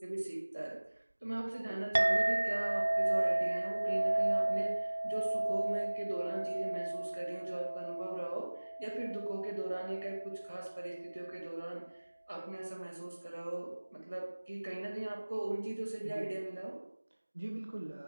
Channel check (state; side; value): inverted; both; correlation -1.00